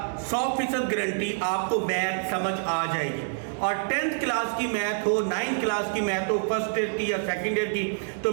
100% गारंटी आपको मैथ समझ आ जाएगी। और 10th क्लास की मैथ हो, 9th क्लास की मैथ हो, फर्स्ट ईयर की या सेकेंड ईयर की, तो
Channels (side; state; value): left; silent; 60 dB below the other